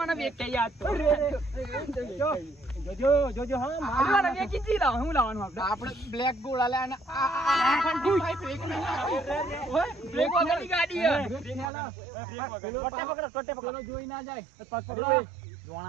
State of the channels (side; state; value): left; drops out; at 11.7 s